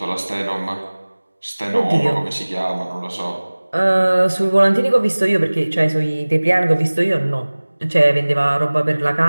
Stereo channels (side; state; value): both; inverted; correlation -1.00